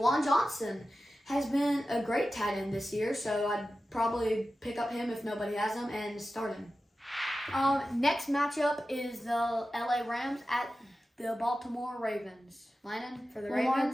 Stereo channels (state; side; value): normal; both; correlation 0.93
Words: Johnson has been a great tight end this year, so I'd probably pick up him if nobody has him and start him. Next matchup is the LA Rams at the Baltimore Ravens. Lyman, for the